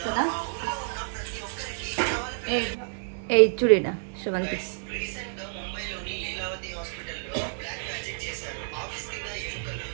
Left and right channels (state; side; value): silent; left; digital silence